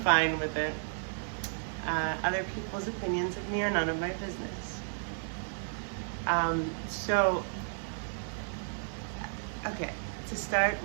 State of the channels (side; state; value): left; silent; digital silence